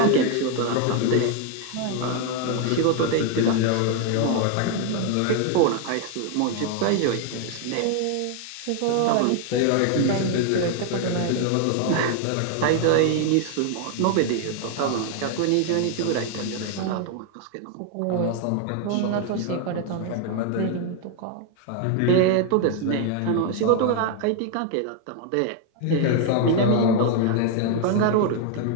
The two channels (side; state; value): both; different; correlation 0.01